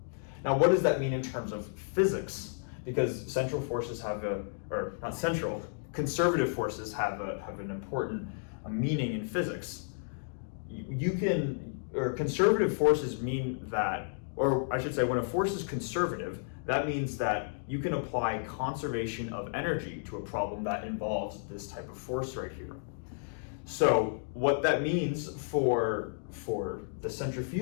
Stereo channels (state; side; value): silent; right; digital silence